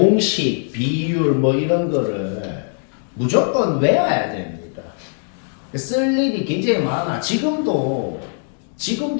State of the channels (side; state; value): right; silent; 63 dB below the other